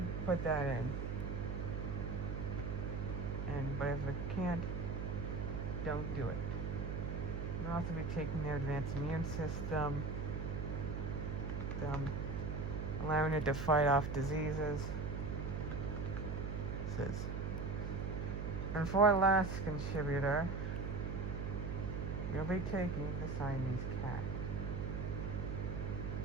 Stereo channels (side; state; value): right; noise; hum, 2 dB below the sound